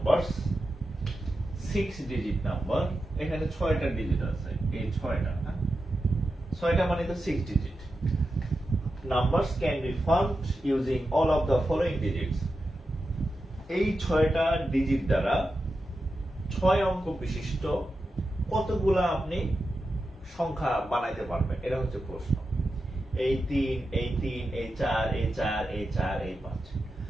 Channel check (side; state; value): both; normal; correlation 0.90